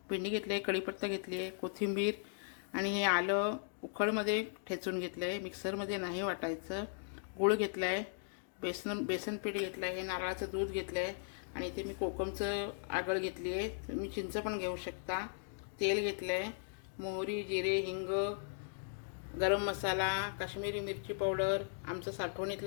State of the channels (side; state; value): right; silent; digital silence